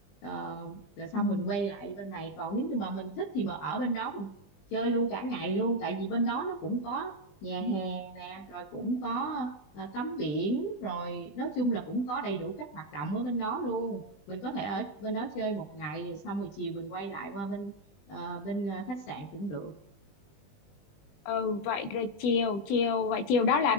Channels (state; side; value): late; right; 20 ms